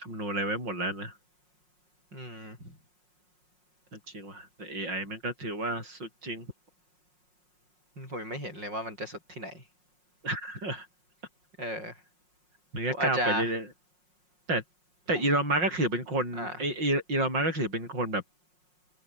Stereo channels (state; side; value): late; left; 5.5 ms